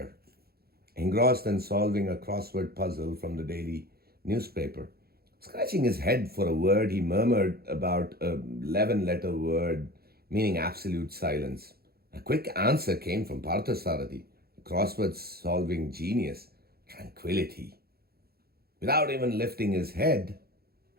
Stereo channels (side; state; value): left; late; 0.45 ms